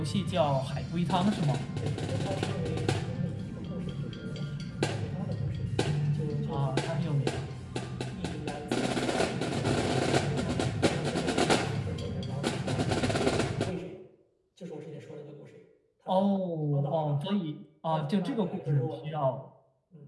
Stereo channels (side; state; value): both; identical; correlation 1.00